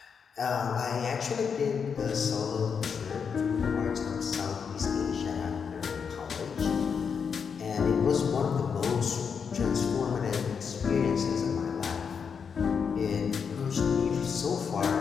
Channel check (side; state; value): right; quieter; 6.4 dB